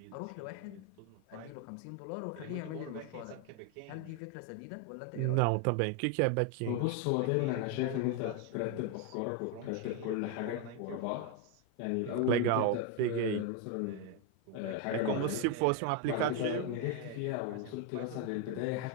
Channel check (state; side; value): different; both; correlation 0.01